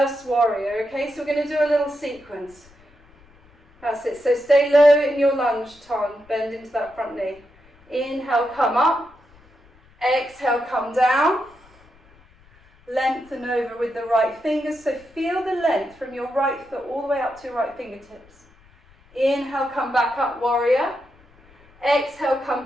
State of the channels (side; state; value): left; noise; rumble, 29 dB below the sound